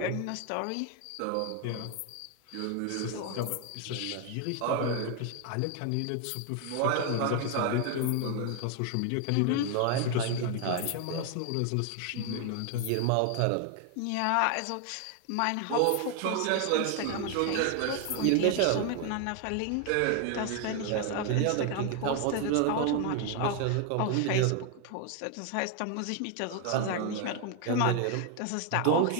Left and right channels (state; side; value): different; both; correlation 0.00